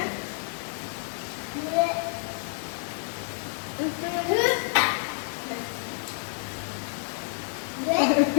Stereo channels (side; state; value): right; silent; digital silence